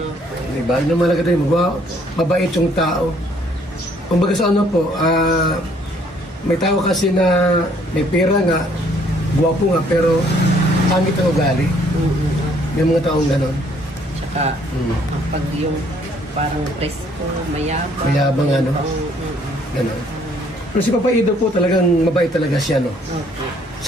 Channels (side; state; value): both; normal; correlation 0.63